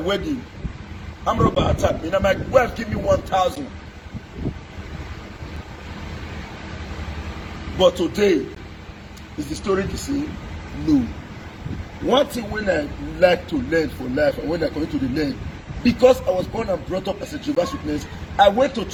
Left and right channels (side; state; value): both; identical; correlation 1.00